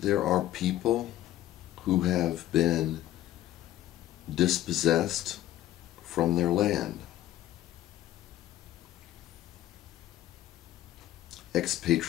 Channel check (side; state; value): right; quieter; 13.7 dB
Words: there are people who have been dispossessed from their land.